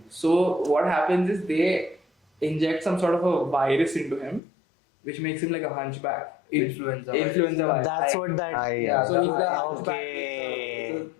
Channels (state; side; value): drops out; right; at 4.4 s